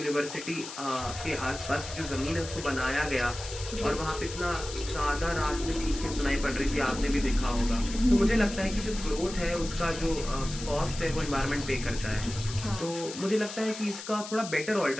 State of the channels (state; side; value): noise; left; hiss, 11 dB below the sound